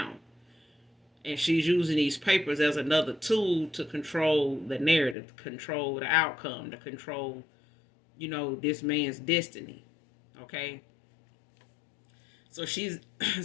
And she's using these papers as another tool to control the narrative, to control the outcome, to control, this man's destiny. Okay? So she's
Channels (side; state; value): right; drops out; at 5.2 s